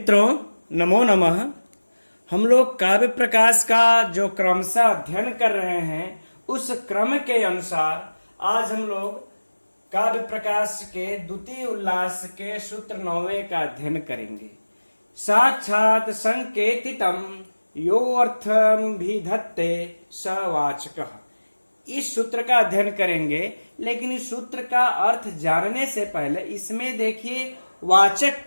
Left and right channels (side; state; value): both; inverted; correlation -1.00